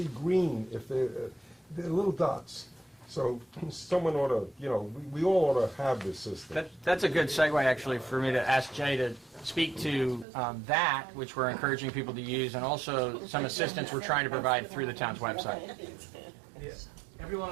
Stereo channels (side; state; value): left; drops out; at 10.2 s